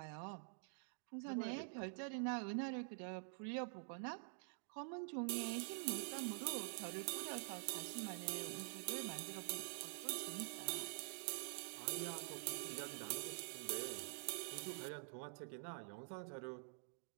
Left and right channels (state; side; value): silent; left; digital silence